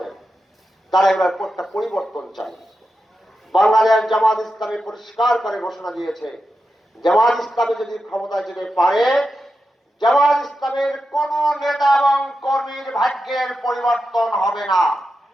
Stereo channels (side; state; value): both; normal; correlation 0.89